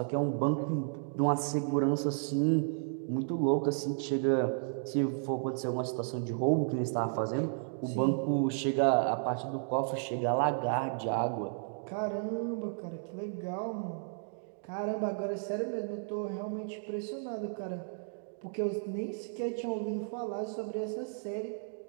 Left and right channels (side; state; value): left; silent; digital silence